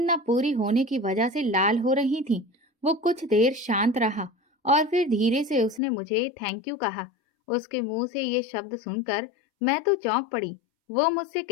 न पूरी होने की वजह से लाल हो रही थीं। वो कुछ देर शांत रहा और फिर धीरे से उसने मुझे थैंक यू कहा। उसके मुंह से ये शब्द सुनकर मैं तो चौंक पड़ी। वो मुझसे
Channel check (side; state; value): right; drops out; at 5.8 s